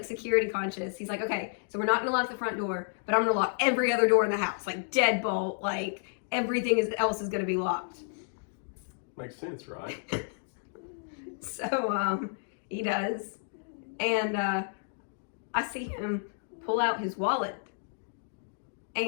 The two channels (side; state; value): right; silent; digital silence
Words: security conscious. He's like, okay, so we're not gonna lock the front door, but I'm gonna lock every other door in the house, like deadbolt, like everything else is gonna be locked. Makes sense, right? So he does, and I see him pull out his wallet,